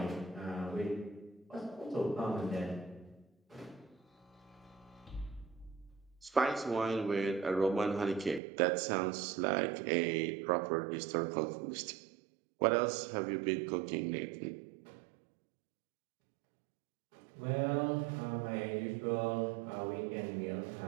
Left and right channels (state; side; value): drops out; left; at 8.4 s